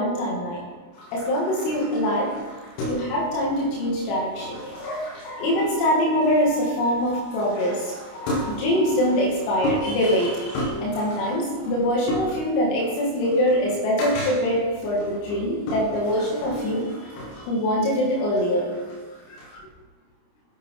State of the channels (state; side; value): late; right; 29 ms